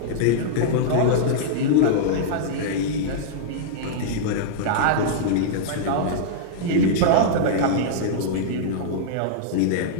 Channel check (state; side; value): different; both; correlation -0.02